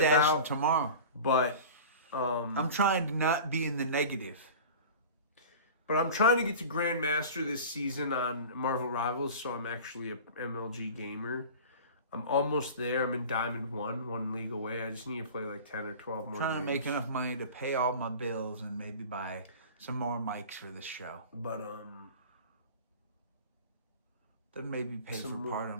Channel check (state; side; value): inverted; both; correlation -0.37